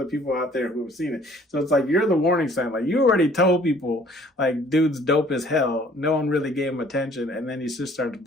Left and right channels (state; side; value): normal; both; correlation 0.56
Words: people out there who have seen it, so it's like you're the warning sign. Like you already told people like dude's dope as hell, no one really gave him attention, and then he just starts